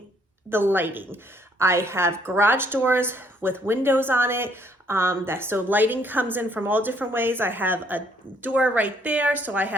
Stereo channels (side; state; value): both; normal; correlation 0.66